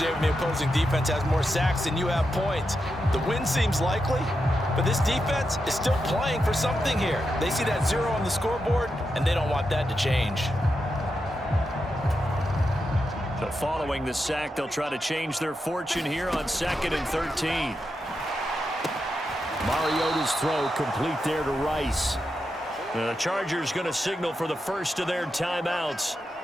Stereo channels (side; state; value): both; normal; correlation 0.87